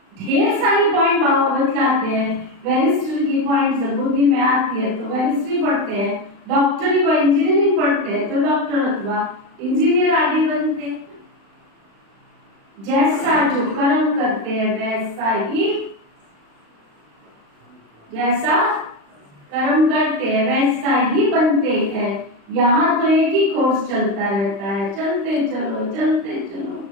ढेर सारी पॉइंट बाबा बतलाते हैं। वेरिस्ट्री की पॉइंट जब बुद्धि में आती है तो वेरिस्ट्री पढ़ते हैं। डॉक्टरी व इंजीनियरिंग पढ़ते हैं तो डॉक्टर अथवा इंजीनियर आदि बनते हैं। जैसा जो कर्म करते हैं वैसा ही, जैसा कर्म करते हैं वैसा ही बनते हैं। यहाँ तो एक ही कोर्स चलता रहता है, चलते चलो चलते चलो।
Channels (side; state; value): left; late; 35 ms